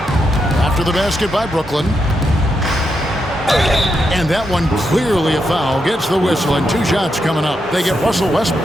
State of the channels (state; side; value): normal; both; correlation 0.83